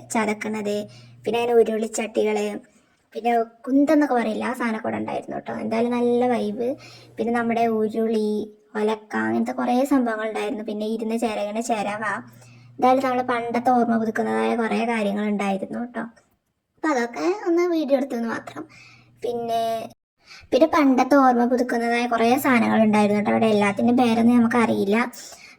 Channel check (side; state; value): both; identical; correlation 1.00